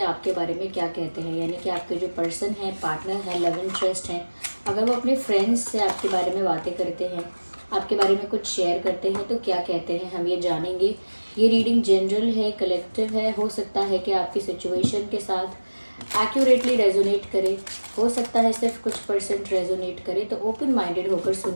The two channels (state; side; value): inverted; both; correlation -1.00